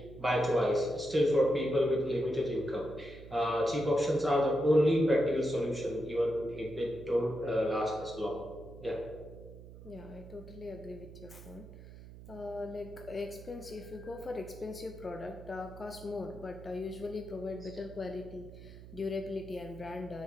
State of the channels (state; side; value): noise; right; hum, 16 dB below the sound